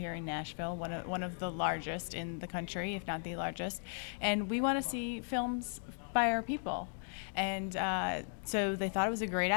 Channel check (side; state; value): right; silent; 53 dB below the other